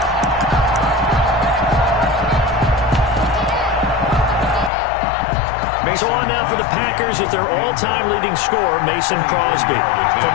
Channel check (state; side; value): drops out; right; at 4.7 s